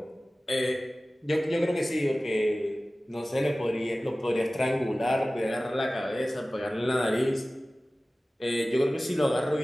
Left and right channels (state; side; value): normal; both; correlation 0.97